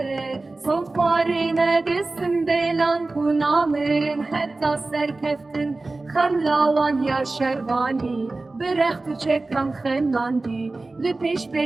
صفاری ندستم دلان کنامرن حتی سرکفتن خملاوان یا شروانی برخت چکم خناندی لپیش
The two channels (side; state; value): left; quieter; 3.3 dB